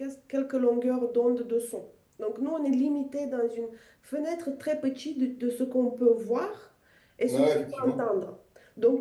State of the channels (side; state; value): both; identical; correlation 1.00